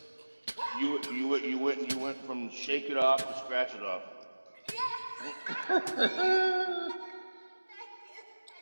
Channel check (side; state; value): both; inverted; correlation -1.00